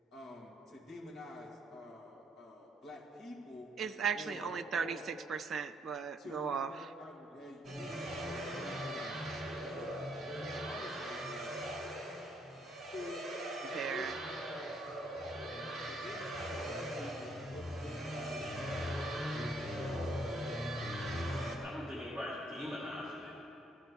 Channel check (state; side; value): normal; both; correlation 0.68